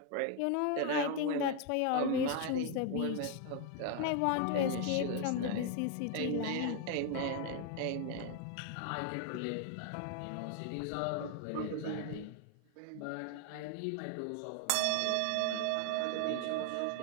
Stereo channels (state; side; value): different; both; correlation 0.01